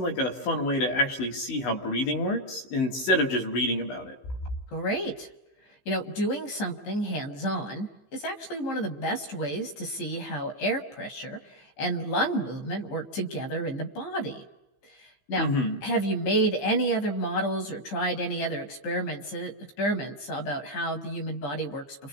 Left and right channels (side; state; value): right; late; 15 ms